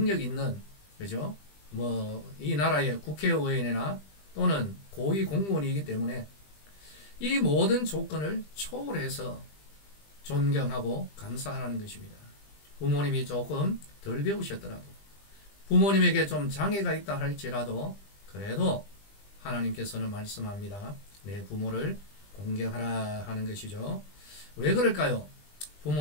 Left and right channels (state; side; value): late; right; 20 ms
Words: 있는, 그죠? 이 나라의 국회의원이나 또는 고위 공무원이기 때문에 이 모든 조건을 초월해서 존경하고 감사하라는 것입니다. 부모님이 조금 덜 배우셨더라도, 부모님에게 좀 장애가 있다 할지라도, 그래도 하나님께서는 말씀합니다. 내 부모를 공경하라 하는 것이죠. 왜 그럴까요?